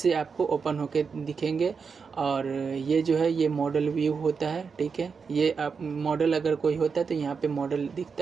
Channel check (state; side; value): quieter; left; 5.6 dB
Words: आपको ओपन होके दिखेंगे, और ये जो है ये मॉडल व्यू होता है, ठीक है। ये आप मॉडल अगर कोई होता है तो यहाँ पे मॉडल